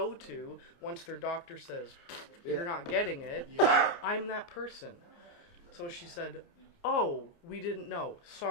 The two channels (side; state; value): right; late; 29 ms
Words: to once their doctor says, you're not getting it. I'm that person. So she said, oh, we didn't know.